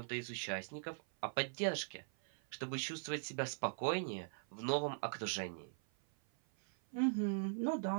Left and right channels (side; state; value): left; silent; 50 dB below the other